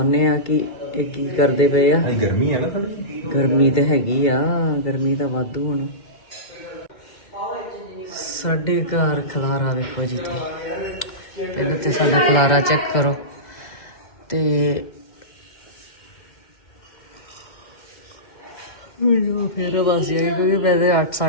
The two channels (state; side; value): late; right; 2.2 ms